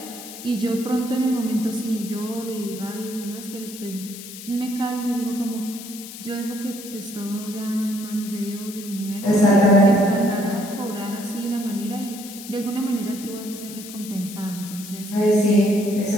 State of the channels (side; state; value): left; noise; hiss, 13 dB below the sound